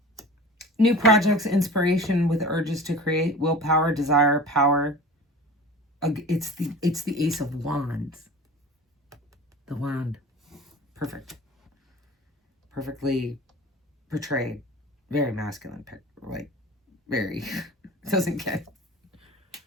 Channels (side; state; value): both; normal; correlation 0.38